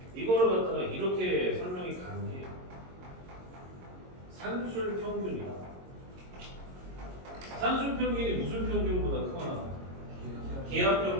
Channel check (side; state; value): left; late; 22 ms